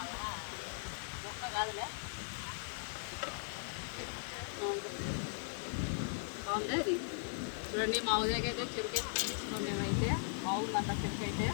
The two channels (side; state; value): right; silent; 52 dB below the other